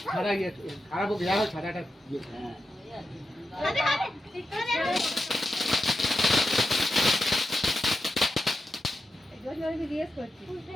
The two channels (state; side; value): normal; both; correlation 0.89